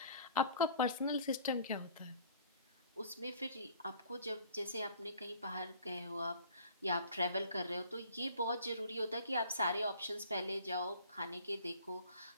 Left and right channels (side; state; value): both; inverted; correlation -0.51